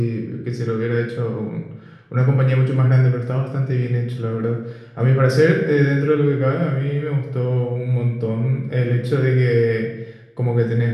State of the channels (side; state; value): both; identical; correlation 1.00